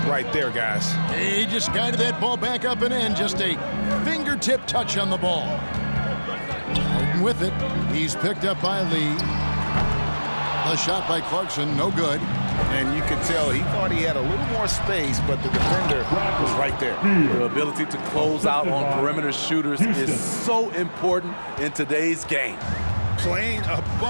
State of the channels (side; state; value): both; inverted; correlation -1.00